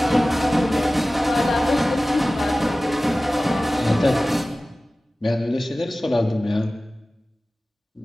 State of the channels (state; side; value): normal; both; correlation 0.97